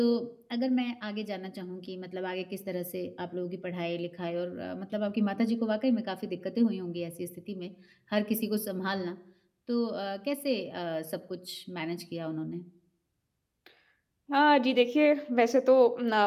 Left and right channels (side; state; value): both; identical; correlation 1.00